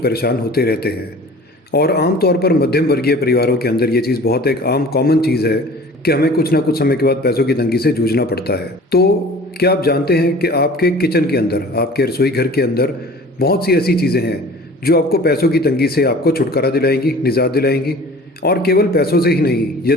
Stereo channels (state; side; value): normal; both; correlation 0.44